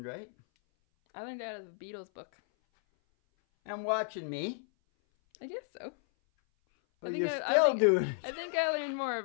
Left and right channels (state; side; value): silent; right; 56 dB below the other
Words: right? I learned out of the Beatles book. And watching me. I guess so. Well, you're still doing it. I think I learned more